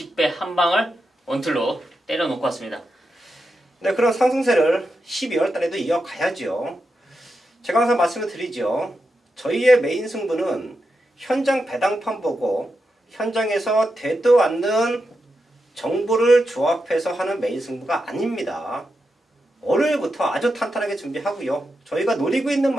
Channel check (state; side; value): normal; both; correlation 0.87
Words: 한방을 원틀로 때려놓고 왔습니다. 네, 그런 상승세를 12월 달에도 이어가야죠. 제가 항상 말씀을 드리죠. 저희의 메인 승부는 현장 배당판 보고 현장에서 되도 않는 정보를 조합해서 하는 메인 승부가 아닙니다. 월요일부터 아주 탄탄하게 준비하고요. 저희가 노리고 있는